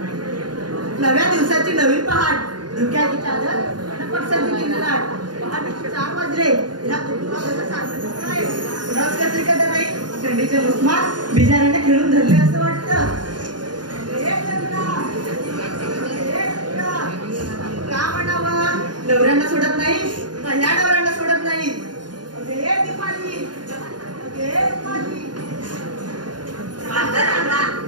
दिवसाची नवी पहाट, धुक्याची चादर पटसंती लाट. पहाटे 4 वाजले. ह्या रस कसली का नाही थंडीचे उस्मात बिजाऱ्यांना खेळून धरले असं वाटतं. का म्हणावं, नवऱ्यांना सोडत नाही का ह्या नवऱ्यांना सोडत नाही.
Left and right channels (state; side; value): late; left; 0.70 ms